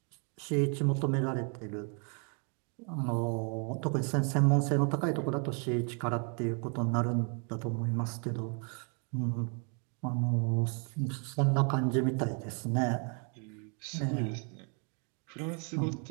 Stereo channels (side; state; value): left; quieter; 39.3 dB